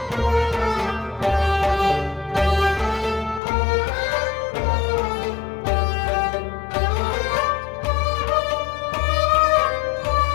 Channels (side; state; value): right; drops out; at 3.4 s